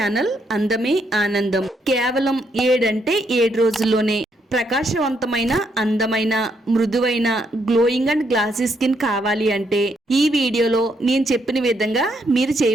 అందమే ఆనందం. కేవలం 7 రోజుల్లోనే ప్రకాశవంతమైన, అందమైన, మృదువైన, గ్లోయింగ్ అండ్ గ్లాసీ స్కిన్ కావాలి అంటే ఈ వీడియోలో నేను చెప్పిన విధంగా మీరు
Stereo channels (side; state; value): both; normal; correlation 0.76